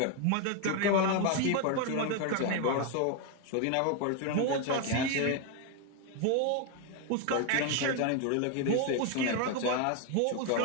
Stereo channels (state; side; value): different; both; correlation 0.01